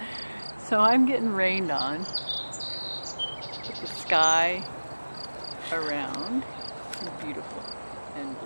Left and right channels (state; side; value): inverted; both; correlation -1.00